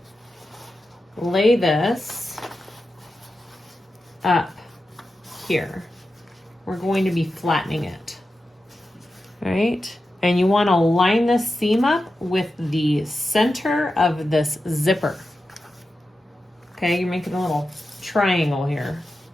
lay this up here. We're going to be flattening it, right? And you want to line this seam up with the center of this zipper. Okay, you're making a little triangle here.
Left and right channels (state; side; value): normal; both; correlation 0.91